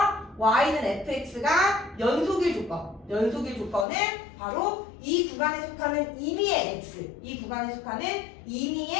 y는 fx가 연속일 조건은 바로 이 구간에 속하는 임의의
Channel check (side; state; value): right; drops out; at 3.9 s